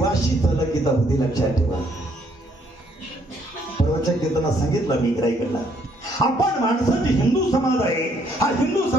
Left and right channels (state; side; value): normal; both; correlation 0.68